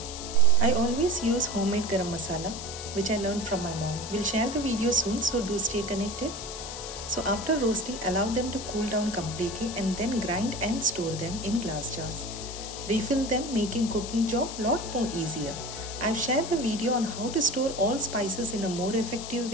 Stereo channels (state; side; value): noise; left; hiss, 9 dB below the sound